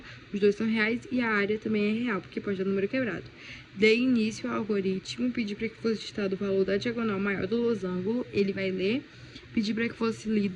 Os dois são reais e a área também é real, porque pode dar número quebrado. Dei início ao algoritmo, pedi para que fosse digitado o valor da diagonal maior do losango, ele vai ler. Pedi para que fosse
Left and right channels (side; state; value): both; identical; correlation 1.00